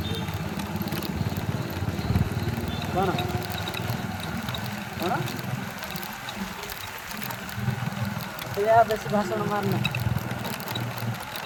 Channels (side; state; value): both; identical; correlation 1.00